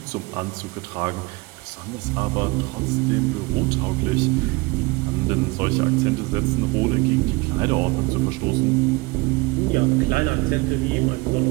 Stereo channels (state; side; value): quieter; left; 24.1 dB